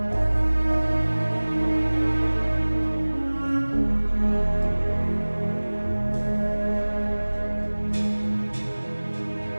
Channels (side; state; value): both; inverted; correlation -1.00